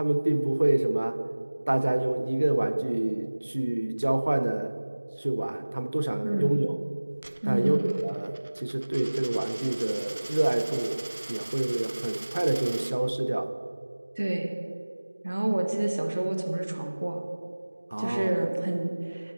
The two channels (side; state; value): both; inverted; correlation -1.00